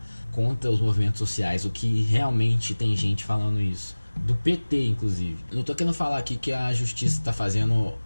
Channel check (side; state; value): both; inverted; correlation -1.00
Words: contra os movimentos sociais, o que realmente tem gente falando isso, do PT inclusive. Não tô querendo falar aqui que a justiça está